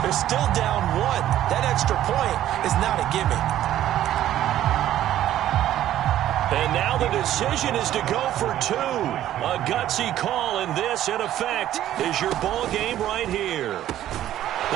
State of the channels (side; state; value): left; quieter; 12.5 dB